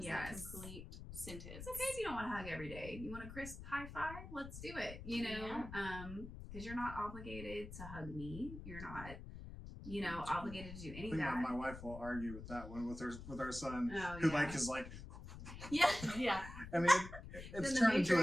a complete sentence. It's okay if you don't want to hug every day. You want a crisp high five? Let's do it, because you're not obligated to hug me. You're not, obligated to do any of that. My wife will argue with that one with our son, who is like. Yeah. I mean, it's turned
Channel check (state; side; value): noise; left; rumble, 11 dB below the sound